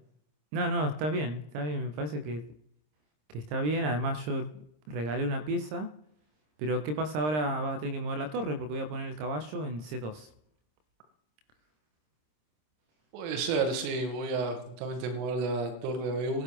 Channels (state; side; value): late; left; 26 ms